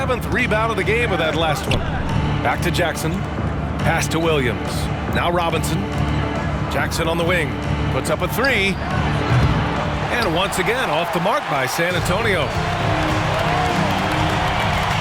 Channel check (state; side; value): identical; both; correlation 1.00